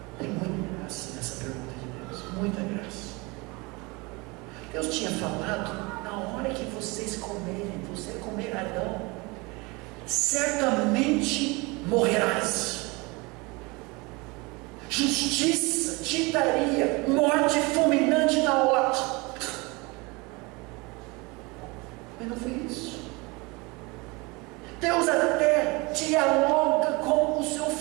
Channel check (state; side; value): quieter; left; 25.9 dB